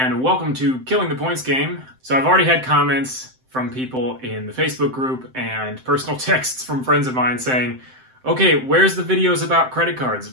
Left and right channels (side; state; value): left; late; 7.7 ms